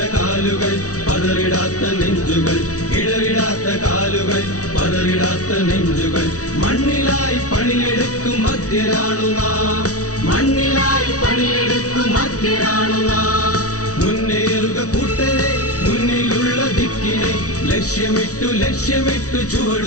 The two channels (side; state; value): right; late; 0.67 ms